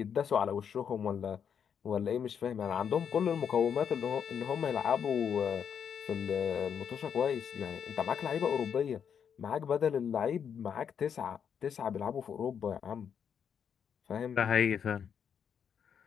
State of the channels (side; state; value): right; quieter; 7.7 dB